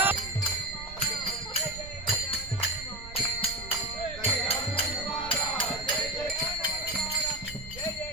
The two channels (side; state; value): right; noise; rumble, 13 dB below the sound